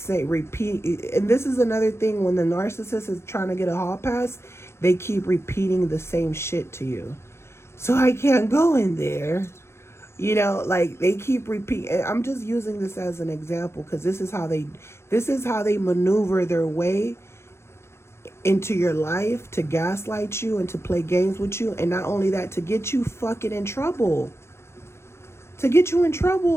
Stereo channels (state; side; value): late; right; 0.13 ms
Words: repeat, and this is another thing when the narcissist is trying to get a hall pass, they keep repeating the same shit to you. So I can't go in there. You know, like they keep repeating. I'm just using this as an example because this is how they maneuver their way into your life to gaslight you and to play games with you, and not only that, to get you fucking in trouble. To get you in